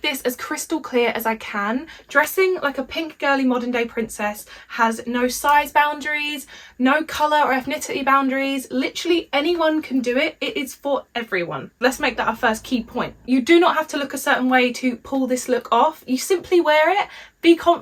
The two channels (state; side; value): identical; both; correlation 1.00